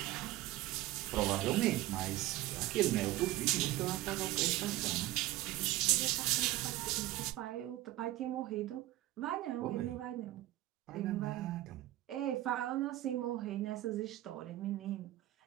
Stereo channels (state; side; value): quieter; left; 16.3 dB